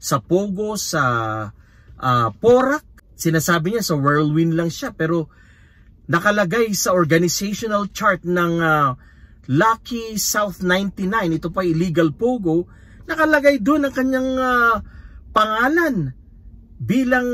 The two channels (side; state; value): both; identical; correlation 1.00